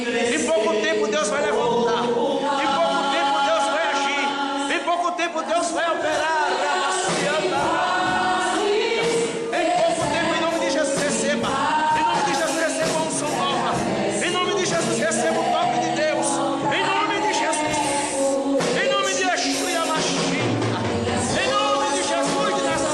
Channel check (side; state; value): both; identical; correlation 1.00